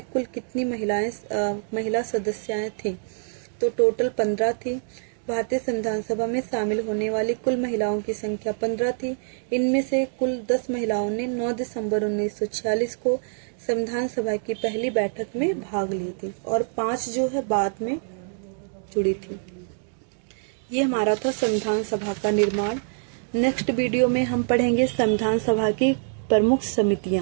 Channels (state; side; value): silent; left; digital silence